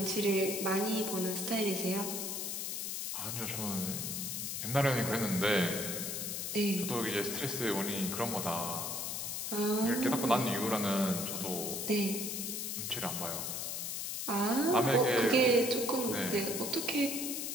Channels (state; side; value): noise; left; hiss, 3 dB below the sound